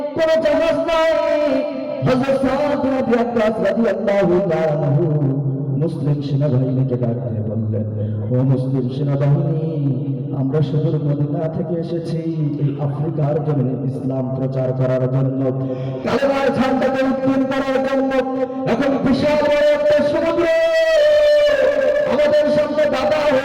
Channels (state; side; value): identical; both; correlation 1.00